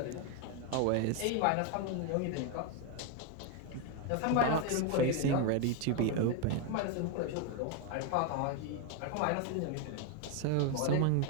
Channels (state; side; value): different; both; correlation 0.01